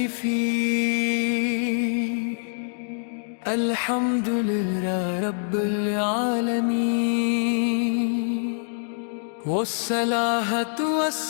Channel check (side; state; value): right; silent; digital silence